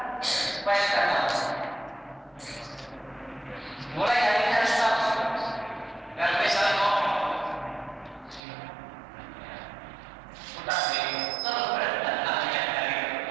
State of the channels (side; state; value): left; drops out; at 8.4 s